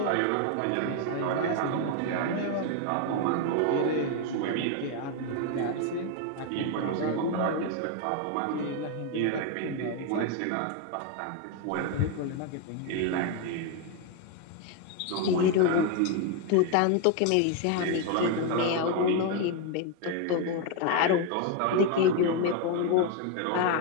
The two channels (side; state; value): both; different; correlation 0.01